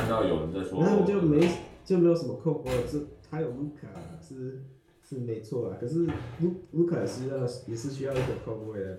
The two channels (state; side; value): identical; both; correlation 1.00